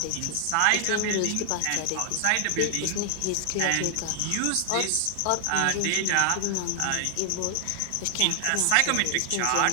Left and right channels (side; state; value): both; different; correlation 0.00